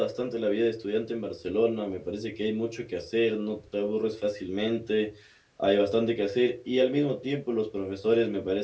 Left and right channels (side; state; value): both; identical; correlation 1.00